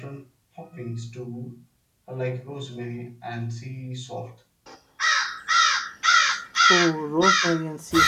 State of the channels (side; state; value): both; identical; correlation 1.00